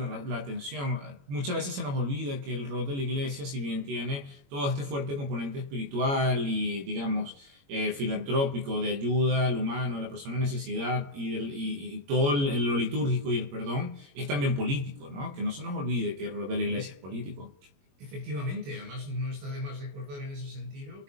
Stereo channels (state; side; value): late; left; 21 ms